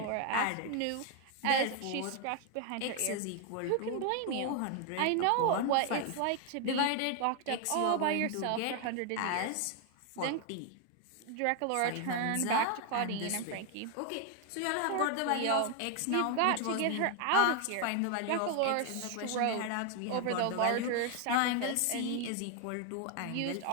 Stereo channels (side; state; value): both; different; correlation 0.01